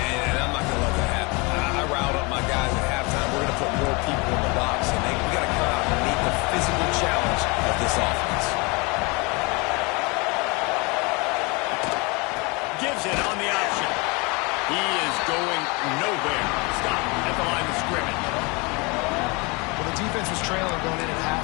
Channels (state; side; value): quieter; right; 28.0 dB